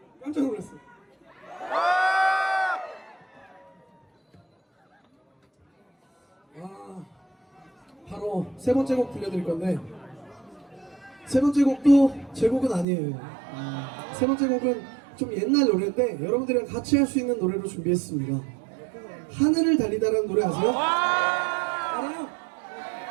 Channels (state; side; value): drops out; left; at 12.9 s